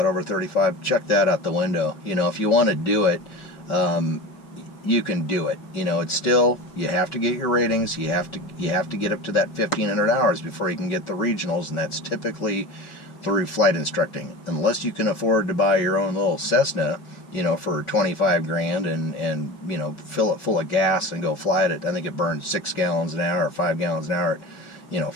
over 35, check that out the window. If you want to do it, you can do it. It's still, you have to get your ratings. You have to get up to that 1,500 hours before you can get the regionals, and that's typically through flight instructing. Unless you can afford to buy your own little Cessna, for 25 grand and fill it full of gas and go fly it. I think it burns 6 gallons an hour or 5 gallons an hour.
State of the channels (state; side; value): late; right; 5.4 ms